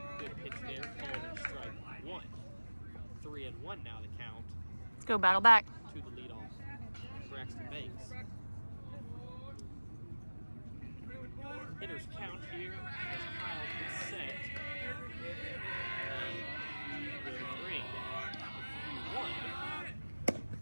Good pitch there, called strike 1. 3-1 now the count. Let's go. Battle back. To the leadoff, Braxton Banks. Hitters count here as Kyle gets set. And will bring 1.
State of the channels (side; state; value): both; inverted; correlation -1.00